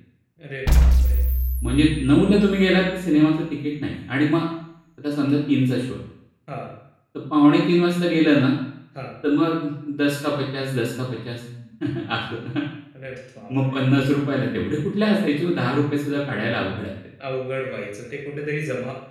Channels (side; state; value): both; identical; correlation 1.00